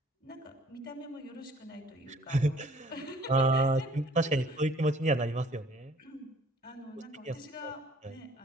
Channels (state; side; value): normal; both; correlation 0.57